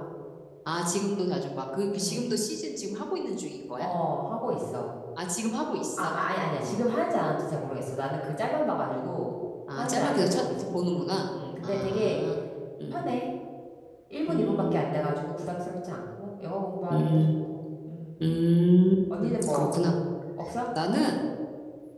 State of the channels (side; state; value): both; identical; correlation 1.00